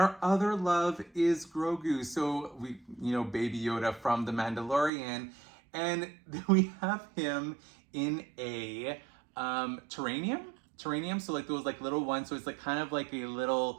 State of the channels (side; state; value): left; drops out; at 4.9 s